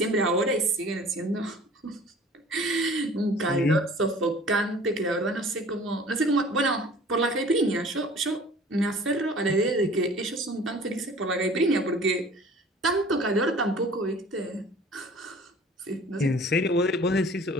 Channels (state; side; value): normal; both; correlation 0.47